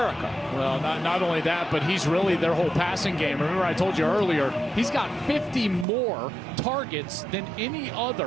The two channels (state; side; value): drops out; left; at 5.9 s